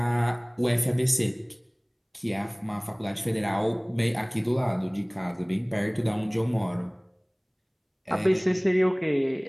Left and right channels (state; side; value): identical; both; correlation 1.00